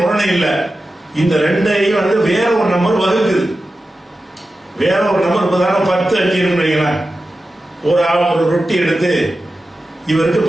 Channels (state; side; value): normal; both; correlation 0.93